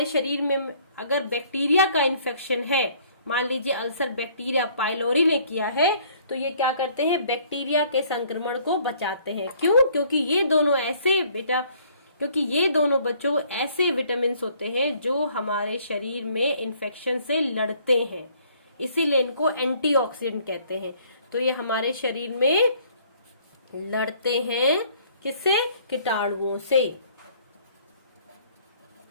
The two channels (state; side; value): inverted; both; correlation -0.60